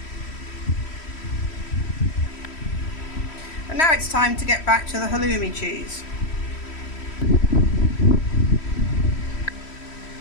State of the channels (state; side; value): late; right; 3.1 ms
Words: And now it's time to get back to the halloumi cheese.